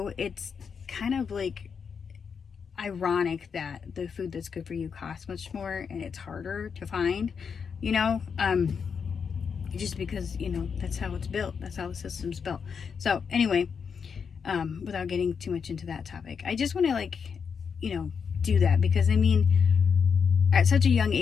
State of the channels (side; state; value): right; quieter; 6.3 dB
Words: it's kind of like ironic that the food that's good for you costs much more and it's harder to find, you know, just because, you know, that's how it's built, that's how the system's built. So anyway, without getting too much into that topic, I just want to, like, you know, do that, because I mean, at such a young